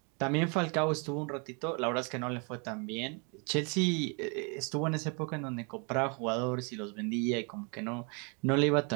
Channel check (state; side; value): quieter; left; 34.4 dB